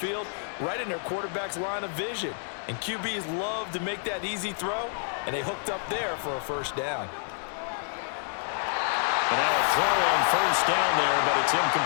right in their quarterback's line of vision. And QBs love to make that easy throw, and they hooked up there for a 1st down. And now a throw on 1st down there, but it's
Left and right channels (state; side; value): silent; right; digital silence